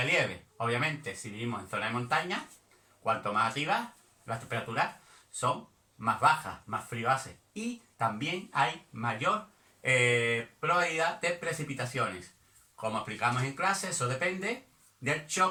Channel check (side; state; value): both; identical; correlation 1.00